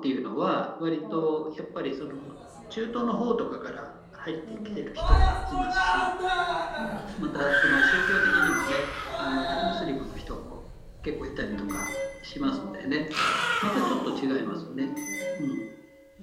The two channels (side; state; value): both; identical; correlation 1.00